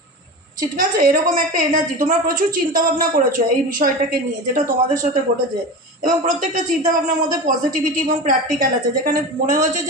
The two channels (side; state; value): both; normal; correlation 0.27